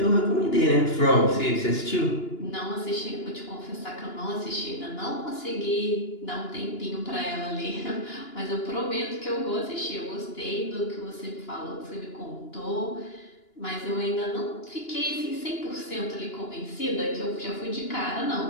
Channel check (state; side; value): late; right; 2.9 ms